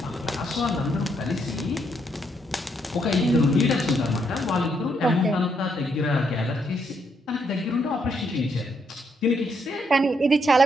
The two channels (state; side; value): normal; both; correlation 0.75